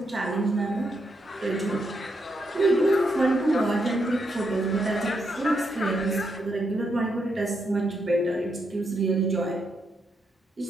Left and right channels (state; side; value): normal; both; correlation 0.80